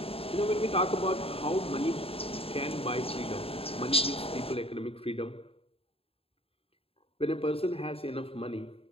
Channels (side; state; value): right; late; 0.28 ms